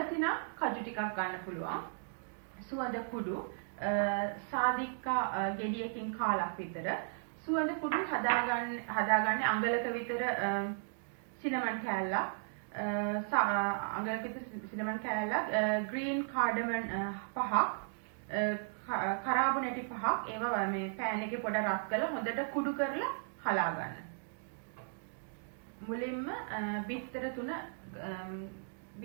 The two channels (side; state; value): left; silent; digital silence